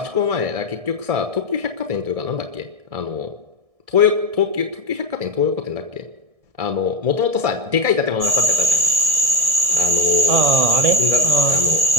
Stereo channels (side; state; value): left; late; 1.6 ms